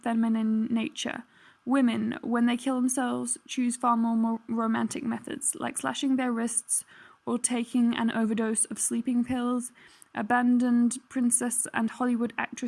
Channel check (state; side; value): identical; both; correlation 1.00